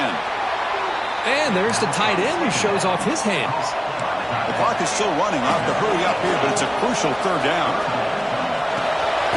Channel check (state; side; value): identical; both; correlation 1.00